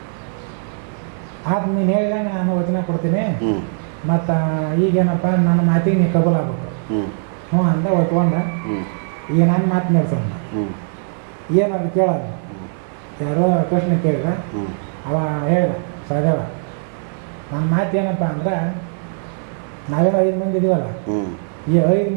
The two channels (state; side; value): silent; left; 57 dB below the other